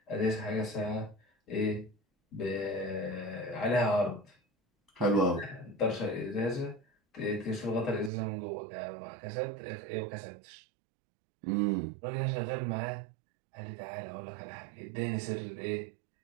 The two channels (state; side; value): drops out; left; at 8.1 s